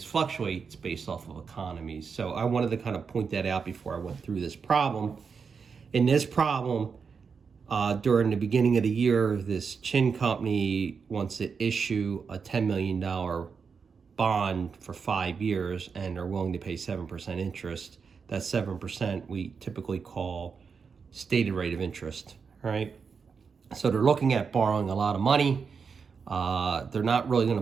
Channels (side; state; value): left; quieter; 5.7 dB